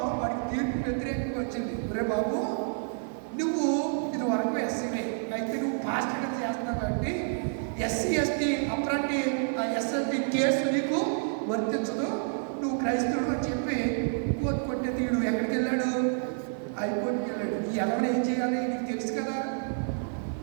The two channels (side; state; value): left; silent; digital silence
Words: వాడికి తీర్పు వ్యతిరేకంగా వచ్చింది. రే బాబు, నువ్వు ఇది వరకు ఎస్సీనే, అయితే నువ్వు పాస్టర్గా చేస్తున్నావు కాబట్టి ఎస్సీ ఎస్టీ అప్రాంటి ఎస్ఎస్టీ కేసు నీకు వర్తించదు, నువ్వు క్రైస్తవుడు అని చెప్పి కోర్టు కొట్టే తీడు. ఎక్కడికి వెళ్ళాడు? హైకోర్టుకి వెళ్ళాడు. ఈ ఎవరు ఏం చేయాలి? నీకు తెలుసు